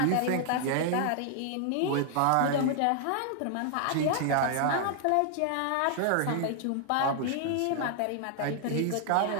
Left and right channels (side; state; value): both; different; correlation 0.00